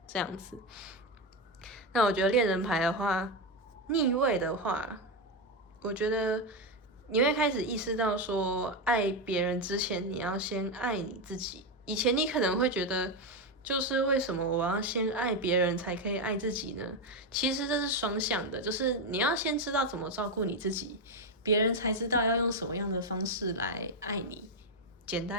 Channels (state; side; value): normal; both; correlation 0.08